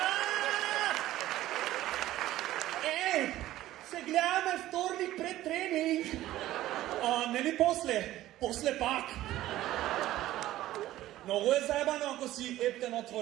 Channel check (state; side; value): quieter; left; 14.8 dB